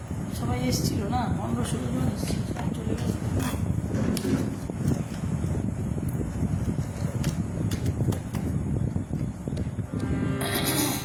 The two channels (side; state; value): both; identical; correlation 1.00